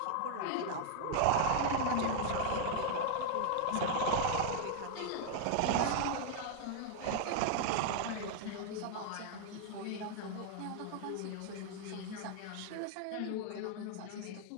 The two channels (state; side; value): different; both; correlation 0.00